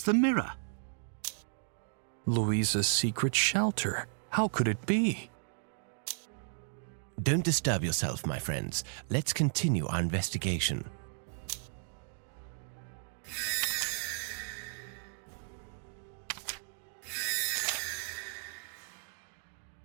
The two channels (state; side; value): silent; left; digital silence